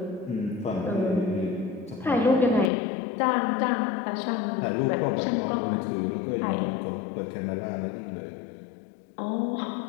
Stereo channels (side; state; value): right; drops out; at 2.7 s